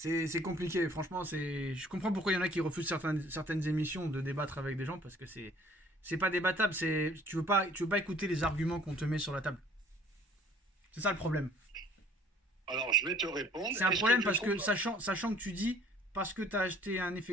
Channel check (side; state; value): both; normal; correlation 0.56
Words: compliqué, franchement. Je comprends pourquoi il y en a qui refusent certaines émissions de débattre avec des gens parce que c'est pas débattable. Tu veux pas écouter les arguments qu'on te met sur la table. C'est ça le problème. Alors je vais te répondre. C'est un problème parce que sachant que tu dis parce que tu as acheté un